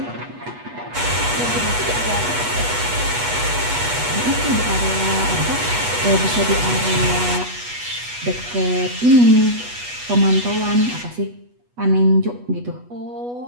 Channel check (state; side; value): late; left; 8.2 ms